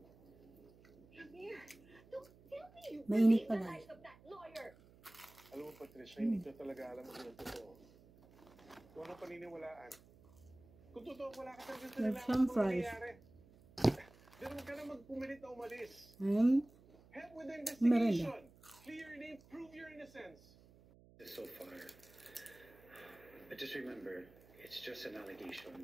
Mainit pala. Alam mo, Patricia, hindi ko talaga alam kung ano totoo. Kung ano paniniwalaan. Kung totoo, wala ka talaga sa nalaman kung nangyayari. Pero huwag ka na magpumilit na umalis. Help with the investigation. Clear your name, prove your innocence. So far, but just remember, it's just an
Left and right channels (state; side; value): noise; right; hum, 24 dB below the sound